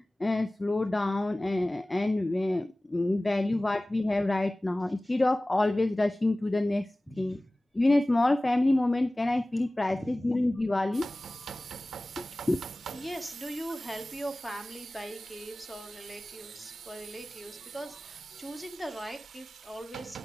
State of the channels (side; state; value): both; normal; correlation 0.98